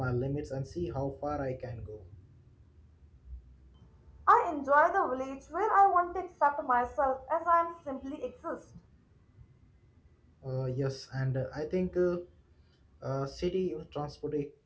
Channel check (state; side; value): identical; both; correlation 1.00